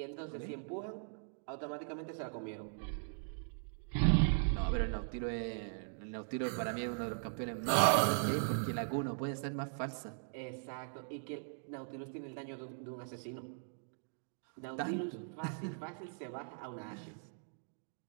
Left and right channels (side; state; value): left; silent; digital silence